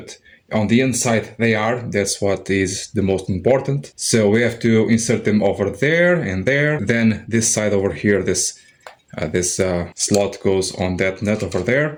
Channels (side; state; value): both; identical; correlation 1.00